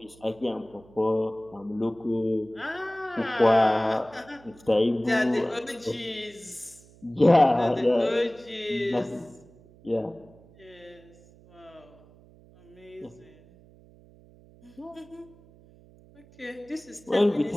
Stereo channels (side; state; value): right; noise; hum, 25 dB below the sound